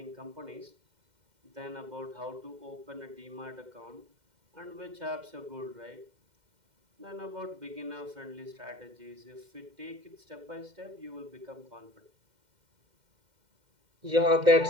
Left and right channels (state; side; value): late; left; 2.1 ms